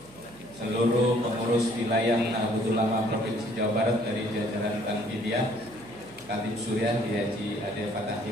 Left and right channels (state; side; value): noise; right; hum, 24 dB below the sound